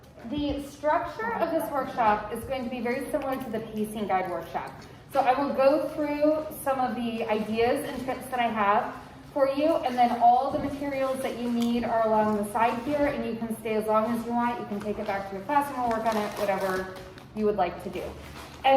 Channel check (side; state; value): both; identical; correlation 1.00